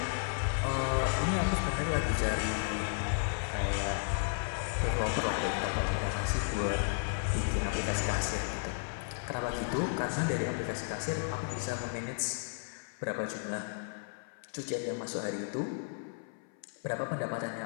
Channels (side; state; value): right; silent; 55 dB below the other